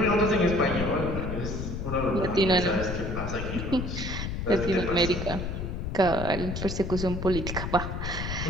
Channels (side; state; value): left; noise; rumble, 4 dB below the sound